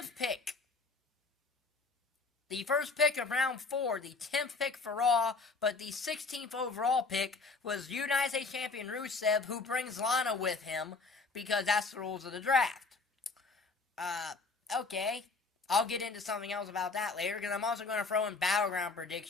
pick. The first pick of round 4, the 10th pick for Raw, but the 16th overall pick was United States Champion Rusev, who brings Lana with him, because that's the rules of the draft. Okay, I'll get into something else about that later, because I'm also going to throw in Battleground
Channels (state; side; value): quieter; right; 4.1 dB